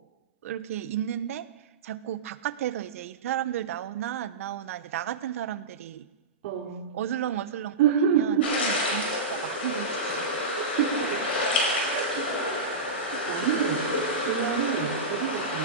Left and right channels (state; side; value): quieter; left; 3.6 dB